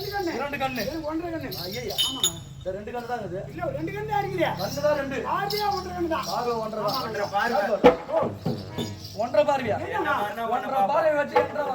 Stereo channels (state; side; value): identical; both; correlation 1.00